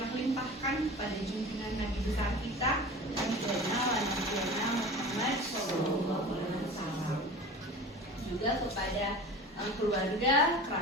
limpahkan pada junjungan Nabi besar kita Nabi Muhammad SAW, juga kepada keluarga,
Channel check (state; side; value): normal; both; correlation 0.36